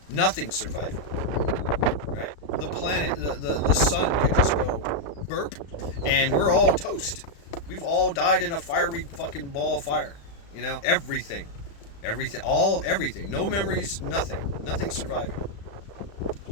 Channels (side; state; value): right; late; 35 ms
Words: Nothing's surviving. Right? The planet, the sun could just go burp, and we're all toast. We've all died in a fiery fucking ball of fire. Everything. Everything. No memories, nothing surviving.